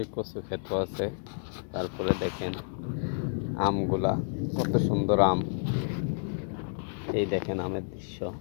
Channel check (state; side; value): silent; right; digital silence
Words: কচু ক্ষেতও আছে। তারপরে দেখেন আমগুলা, কত সুন্দর আম। এই দেখেন আমের দৃশ্য।